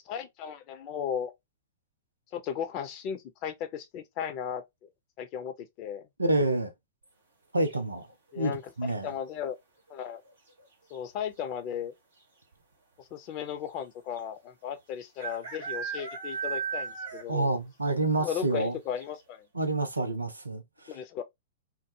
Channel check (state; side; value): inverted; both; correlation -0.43